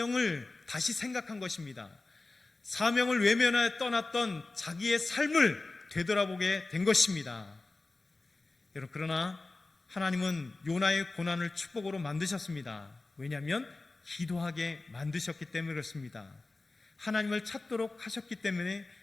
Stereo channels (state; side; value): quieter; right; 3.3 dB